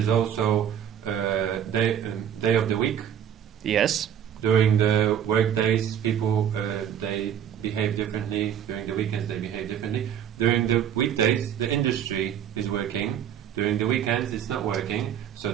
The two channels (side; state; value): left; quieter; 9.4 dB